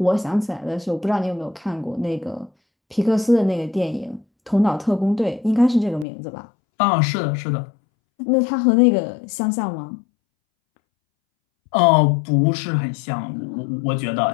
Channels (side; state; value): right; drops out; at 6.1 s